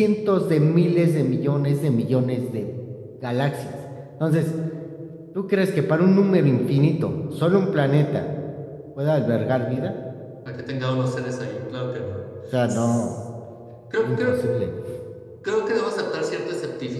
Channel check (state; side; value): identical; both; correlation 1.00